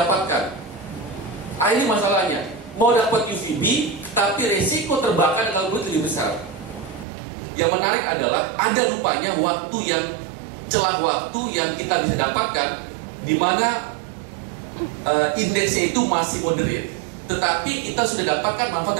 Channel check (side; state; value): left; drops out; at 7.1 s